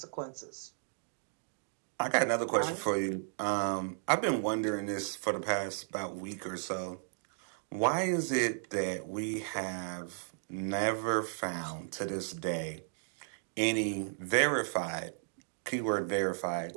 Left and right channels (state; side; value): silent; left; digital silence